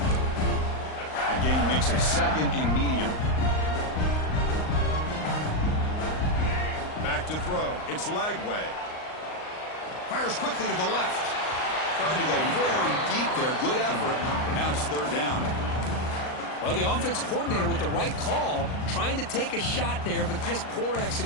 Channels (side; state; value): right; late; 38 ms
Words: That gain makes it second and medium. Back to throw. It's Lagway. Fires quickly to the left. Tried to go very deep there. Good effort. Now it's third down. Well, the offense coordinator with the right call, trying to take a shot there, but just poor